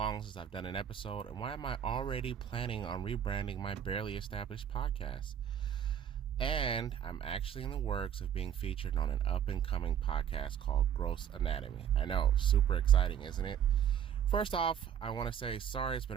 since I've done an episode? And why am I already planning on rebranding my barely established podcast? And I'm actually in the works of being featured on an up-and-coming podcast called Gross Anatomy. I know, super exciting, isn't it? First off, I want to say sorry. It's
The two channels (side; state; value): left; quieter; 9.1 dB